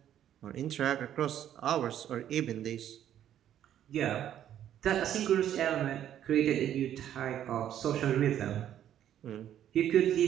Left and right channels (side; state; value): left; quieter; 10.8 dB